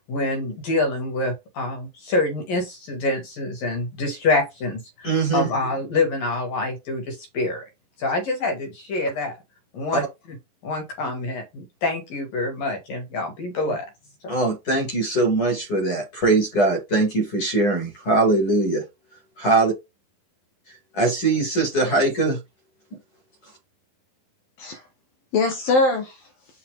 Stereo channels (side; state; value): right; late; 10 ms